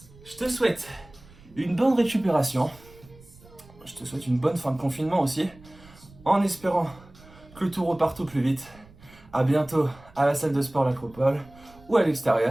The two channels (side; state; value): right; noise; rumble, 24 dB below the sound